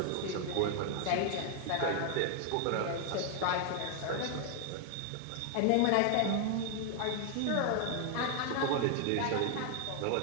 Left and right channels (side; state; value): both; different; correlation 0.00